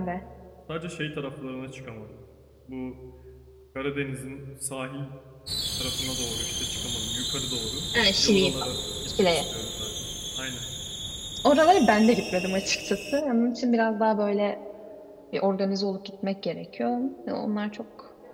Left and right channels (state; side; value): identical; both; correlation 1.00